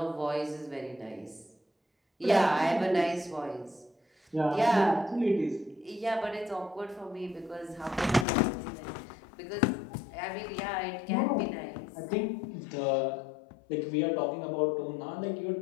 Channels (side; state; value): right; drops out; at 8.2 s